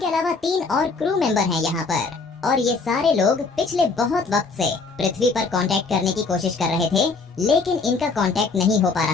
अलावा 3 और क्रू मेंबर हैं यहाँ पर। और ये सारे लोग पिछले बहुत वक्त से पृथ्वी पर कांटेक्ट करने की कोशिश कर रहे थे, लेकिन इनका कांटेक्ट नहीं हो पा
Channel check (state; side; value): quieter; right; 4.3 dB